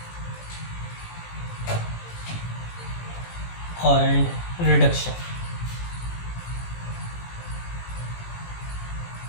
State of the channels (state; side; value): late; right; 17 ms